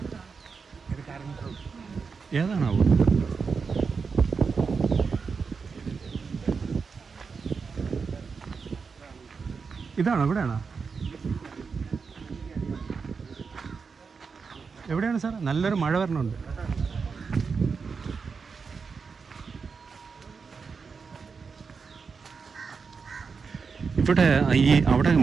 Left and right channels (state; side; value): quieter; left; 5.3 dB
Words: ഏതാണാവോ? ഇതാണോ? എവിടെയാണോ? എവിടെയാണ് സാർ? നല്ലൊരു മഴ വരണുണ്ട്. ഇവിടെ അവിടെ